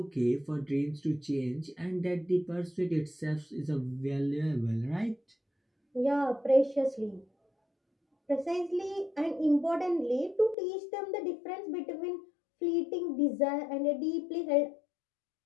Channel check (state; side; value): drops out; right; at 10.6 s